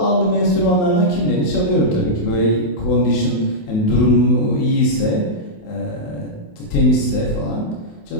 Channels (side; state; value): right; late; 28 ms